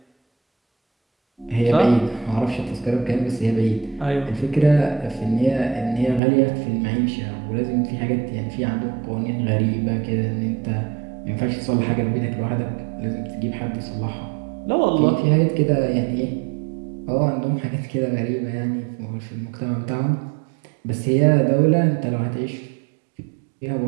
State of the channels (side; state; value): left; drops out; at 6.2 s